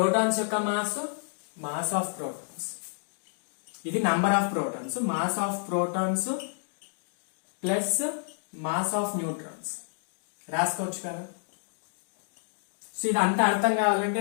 యొక్క మాస్ ఆఫ్ ప్రోటాన్స్, ఇది number of protons, mass of protons plus mass of neutrons రాసుకోవచ్చు కదా. సో ఇది అంతా అర్థం కావాలంటే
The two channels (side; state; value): right; silent; digital silence